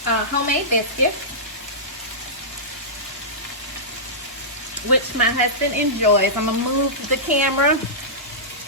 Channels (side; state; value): both; normal; correlation -0.16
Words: homemade biscuits, which my husband enjoys. I'm gonna move the camera,